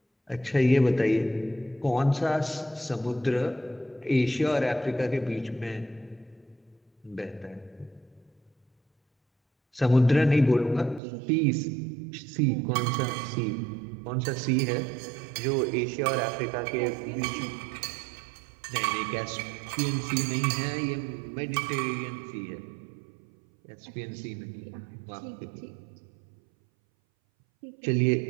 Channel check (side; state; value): left; drops out; at 11.0 s